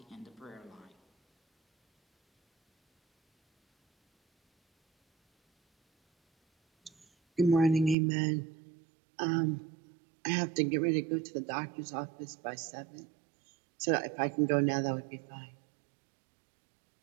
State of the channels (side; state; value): left; drops out; at 8.0 s